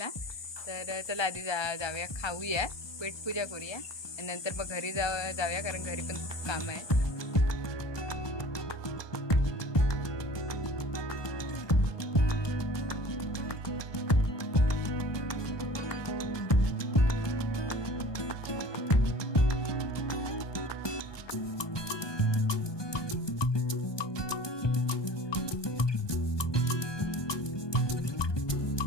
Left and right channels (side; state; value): right; late; 1.2 ms